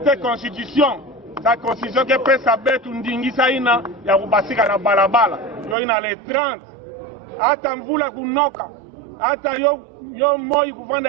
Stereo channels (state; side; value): drops out; left; at 5.8 s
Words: constitution sa constitution ke pesa betu ndingisa ina ya kubasika na balabala yoyi na le 30 ata mvula kunoka ata yo moi kuvanda